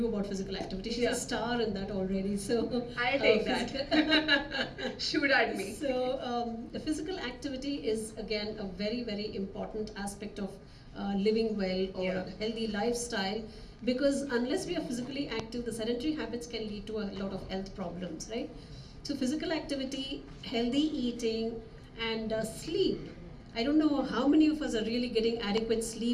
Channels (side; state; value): both; identical; correlation 1.00